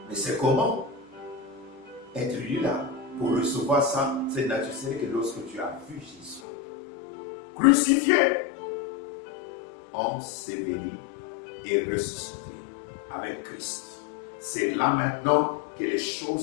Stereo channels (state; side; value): drops out; right; at 6.4 s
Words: Mais c'est comment être lui là pour recevoir ça, cette nature, c'est que lorsque tu as vu Jésus crucifié, enseveli et ressuscité avec Christ. C'est là maintenant que les